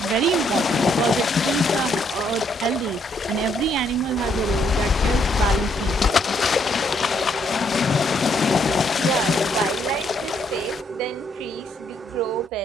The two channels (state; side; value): normal; both; correlation 0.71